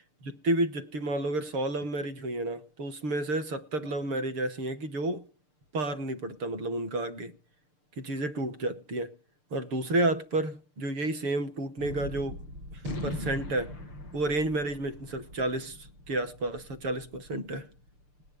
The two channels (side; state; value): left; late; 6.7 ms